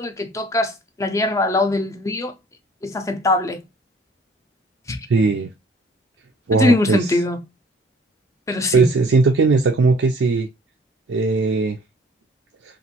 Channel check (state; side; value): normal; both; correlation 0.54